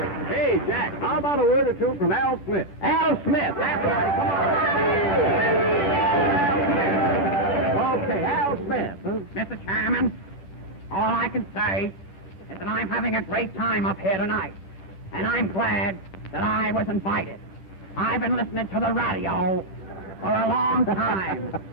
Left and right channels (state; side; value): late; right; 10 ms